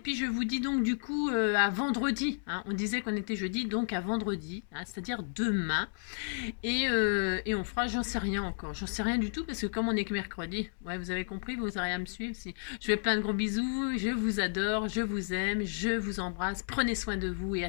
je vous dis donc du coup à vendredi. Hein. On disait qu'on était jeudi, donc à vendredi, hein, c'est-à-dire demain. Et on fera, j'en sais rien encore. J'en sais rien du tout parce que comme on est que mercredi, ouais, vous avez compris, vous aurez à me suivre. Si. Je fais plein de gros bisous, je vous adore, je vous aime, je vous embrasse. Prenez soin de vous et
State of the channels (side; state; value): right; silent; digital silence